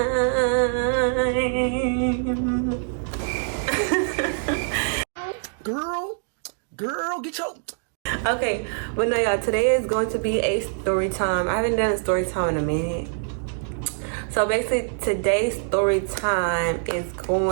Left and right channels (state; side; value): silent; left; digital silence